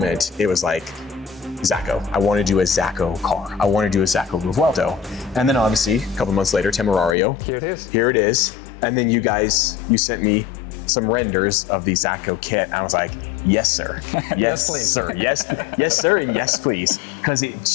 it was like, ZACOE. I want to do a ZACOE car. I want to do a ZACOE Revuelto. And then obviously, a couple months later, Temerario. Here it is. Here it is. And then you sent me some renders of the ZACOE kit. And I was like, yes, sir. Yes, please. Sir. Yes, yes, sir, and yes, please. Because it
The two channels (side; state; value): right; drops out; at 7.2 s